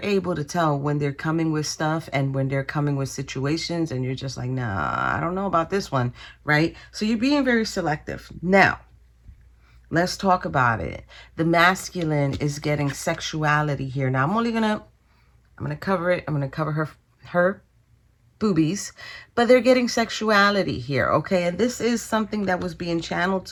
able to tell when they're coming with stuff and when they're coming with situations, and you're just like, nah, I don't know about this one, right? So you're being very selective. Now, let's talk about it. The masculine is getting sexuality here. Now, I'm gonna cover it. I'm gonna cover her boobies, but they're getting sexuality here, okay? And this is something that was being channeled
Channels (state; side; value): identical; both; correlation 1.00